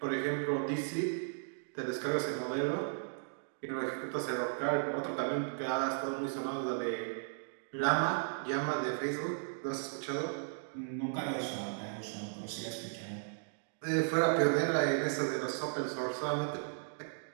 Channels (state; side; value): silent; left; digital silence